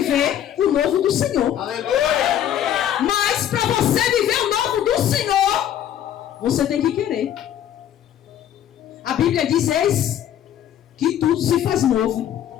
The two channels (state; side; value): quieter; right; 10.6 dB